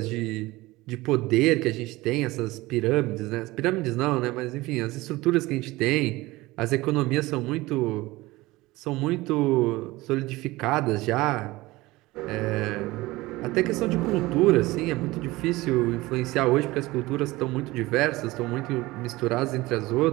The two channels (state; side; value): quieter; left; 19.9 dB